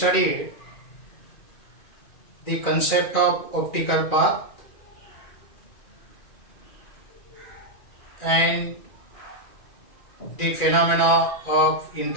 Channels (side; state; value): right; late; 2.5 ms